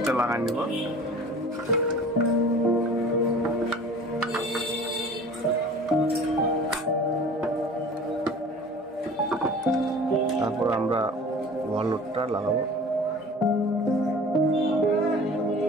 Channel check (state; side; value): normal; both; correlation 0.43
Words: লাগাই নিব। তারপর আমরা ওভারলোডটা লাগাবো।